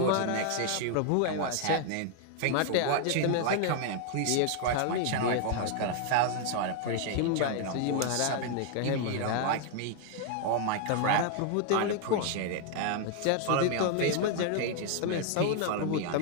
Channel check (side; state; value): both; different; correlation 0.00